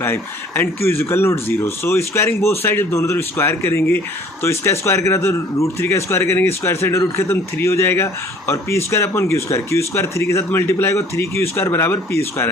and Q is equal not 0। So squaring both side, जब दोनों तरफ स्क्वायर करेंगे तो इसका स्क्वायर करा तो √3 का स्क्वायर करेंगे, स्क्वायर साइड रूट खत्म, 3 हो जाएगा। और P square upon Q square 3 के साथ मल्टीप्लाई होगा, 3Q स्क्वायर बराबर P स्क्वायर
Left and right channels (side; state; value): both; normal; correlation 0.54